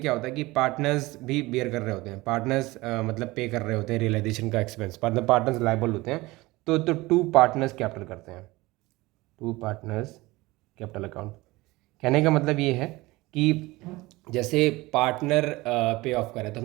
होता है कि पार्टनर्स भी बेयर कर रहे होते हैं, पार्टनर्स मतलब पे कर रहे होते हैं रियलाइजेशन का एक्सपेंस, मतलब पार्टनर्स लायबल होते हैं। तो टू पार्टनर्स कैपिटल करते हैं, टू पार्टनर्स कैपिटल अकाउंट। कहने का मतलब ये है कि जैसे पार्टनर पे ऑफ करे, तो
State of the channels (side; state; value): left; quieter; 20.8 dB